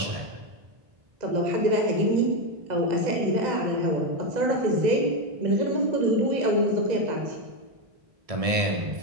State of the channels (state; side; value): late; left; 1.6 ms